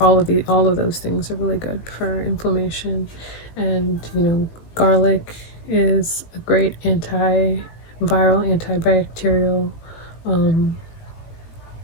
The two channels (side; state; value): right; late; 19 ms